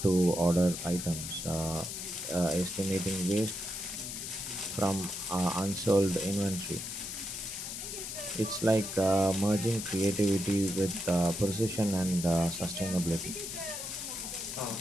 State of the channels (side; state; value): left; noise; hiss, 6 dB below the sound